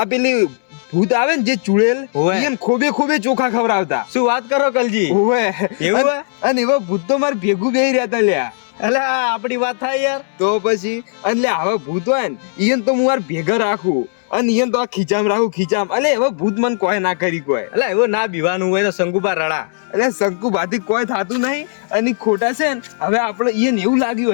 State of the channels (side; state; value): right; silent; 68 dB below the other